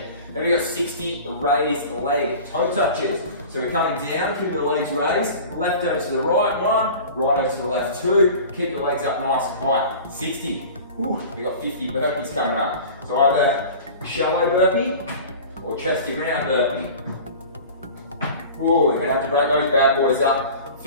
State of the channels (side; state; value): both; inverted; correlation -0.39